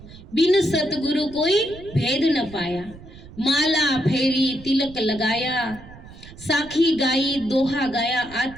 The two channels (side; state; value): right; noise; rumble, 18 dB below the sound